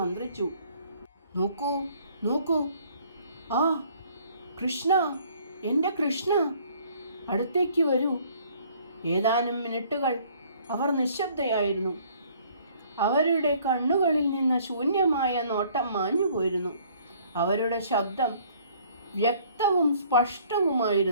നോക്കൂ നോക്കൂ, ആ കൃഷ്ണ, എൻ്റെ കൃഷ്ണ, അടുത്തേക്ക് വരൂ. ഏതാനും മിനിറ്റുകൾ അവർ നിശബ്ദയായിരുന്നു. അവരുടെ കണ്ണുകളിൽ നിന്ന് ശൂന്യമായ നോട്ടം മാഞ്ഞുപോയിരുന്നു. അവരുടെ ശബ്ദം വ്യക്തവും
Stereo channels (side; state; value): both; inverted; correlation -0.59